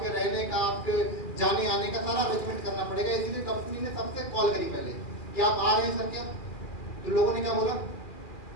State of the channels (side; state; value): right; late; 2.4 ms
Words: रहने का, आपके जाने आने का सारा अरेंजमेंट करना पड़ेगा। इसीलिए कंपनी ने सबसे कॉल करी पहले कि आप आ रहे हैं सर क्या? तो लोगों ने क्या बोला?